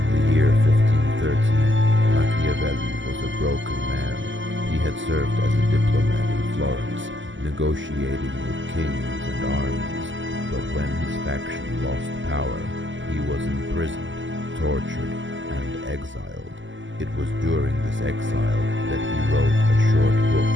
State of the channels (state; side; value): late; left; 0.55 ms